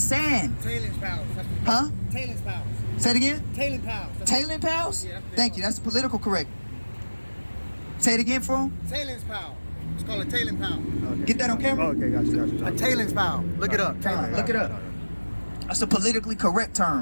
Tailings piles. Huh? Tailings piles. Say it again? Tailing piles. Tailing piles? Yeah, thank you. That's political correct. Say it again for him. Tailings pile. It's called a tailing pile. Okay. Get that on camera? Oh, okay, gotcha. A tailings pile. Look it up. Look it up. That's a politically correct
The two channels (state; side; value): inverted; both; correlation -1.00